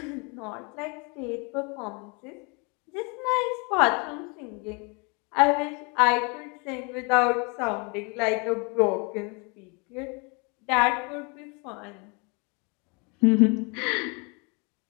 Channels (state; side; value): quieter; right; 31.6 dB